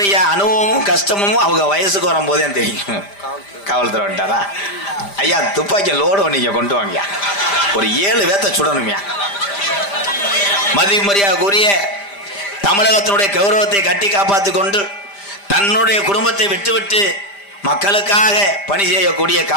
அனுபவமும் கஷ்டமும் அவங்க வயசுக்கு வரும்போதே தெரியும். காவல்துறை வந்துட்டாரா? ஐயா துப்பாக்கி லோடு நீங்க கொண்டு வாங்கயா, ஒரு 7 பேத்த சுடணுமியா. மதிமரியாதைக்குரிய தமிழகத்தினுடைய கௌரவத்தை கட்டி காப்பாற்றி கொண்டு தன்னுடைய குடும்பத்தை விட்டுவிட்டு மக்களுக்காக பணி செய்யக்கூடிய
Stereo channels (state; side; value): late; right; 5.0 ms